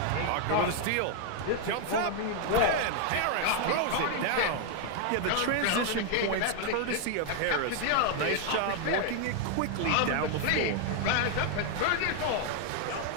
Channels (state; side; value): different; both; correlation 0.00